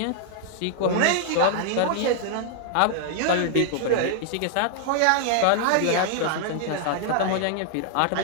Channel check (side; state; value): both; different; correlation 0.00